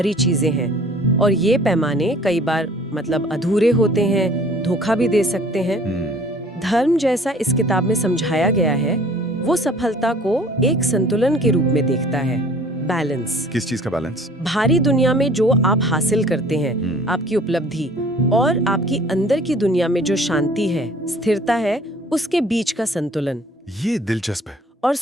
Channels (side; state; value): both; normal; correlation 0.51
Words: चीजें हैं। और ये पैमाने कई बार मतलब अधूरे होते हैं, धोखा भी दे सकते हैं। धर्म जैसा इस किताब में समझाया गया है, वो सफलता को एक संतुलन के रूप में देखता है। बैलेंस। किस चीज का बैलेंस? बाहरी दुनिया में जो आप हासिल करते हैं, आपकी उपलब्धि, और आपकी अंदर की दुनिया में जो शांति है, स्थिरता है, उसके बीच का संतुलन। ये दिलचस्प है। और